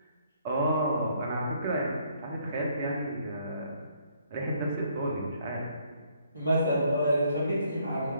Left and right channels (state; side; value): inverted; both; correlation -0.67